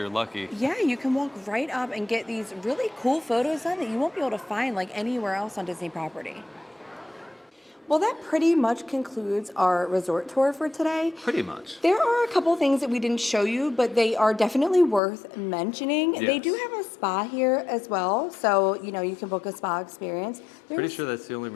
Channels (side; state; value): right; drops out; at 15.0 s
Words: lucky. Yeah, you can walk right up and get these really cool photos done that you won't be able to find like anywhere else on Disney property. Well, that pretty much concludes our resort tour for today. Pretty much. There are a couple things that we didn't show you, but they are definitely worth mentioning. Yes. They do have a spa here as well, so you know you can book a spa experience. Pretty sure that's the only